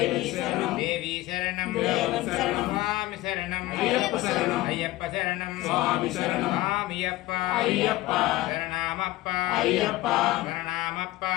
శరణం దేవి శరణం దేవన్ శరణం స్వామి శరణం అయ్యప్ప శరణం అయ్యప్ప శరణం స్వామి శరణం స్వామియప్ప అయ్యప్ప శరణమప్ప అయ్యప్ప శరణమప్ప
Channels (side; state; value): right; quieter; 17.7 dB